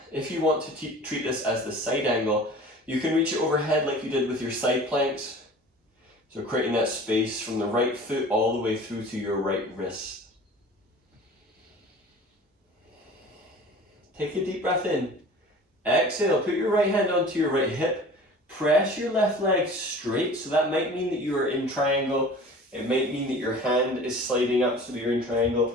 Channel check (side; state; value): both; normal; correlation 0.42